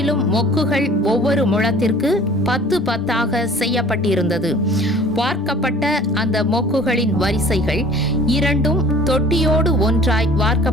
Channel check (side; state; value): both; normal; correlation 0.48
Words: மொக்குகள் ஒவ்வொரு முழத்திற்கு 10 10ஆக செய்யப்பட்டிருந்தது. வார்க்கப்பட்ட அந்த மொக்குகளின் வரிசைகள் 2 தொட்டியோடு ஒன்றாய்